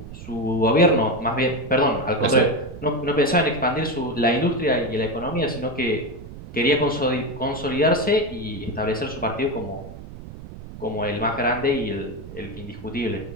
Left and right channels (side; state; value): right; noise; rumble, 14 dB below the sound